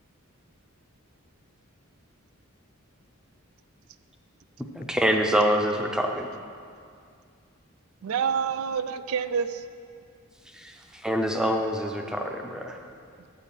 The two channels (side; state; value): both; normal; correlation 0.41